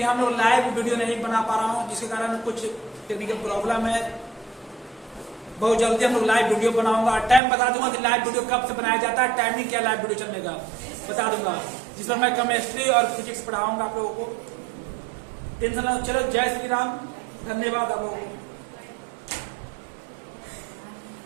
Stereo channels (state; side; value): drops out; left; at 7.4 s